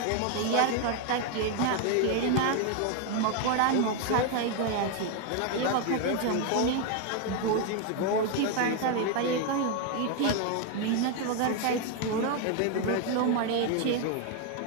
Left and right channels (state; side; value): different; both; correlation 0.01